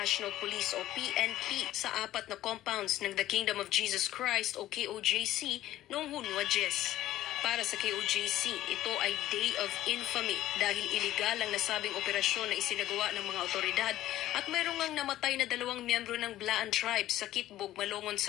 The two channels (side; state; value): right; quieter; 14.1 dB